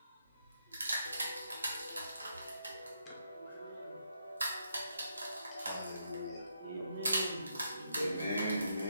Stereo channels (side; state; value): both; inverted; correlation -0.78